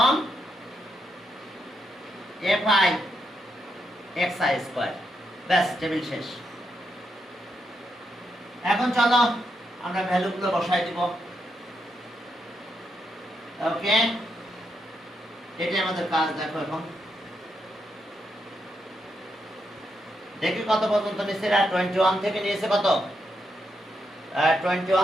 fi xi স্কয়ার, ব্যাস টেবিল শেষ। এখন চলো আমরা ভ্যালুগুলো বসাই দিব, ওকে, এটাই আমাদের কাজ। দেখো এখন দেখি কত পর্যন্ত নিচ্ছে, 21 থেকে নিয়েছে কত,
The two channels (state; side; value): normal; both; correlation 0.82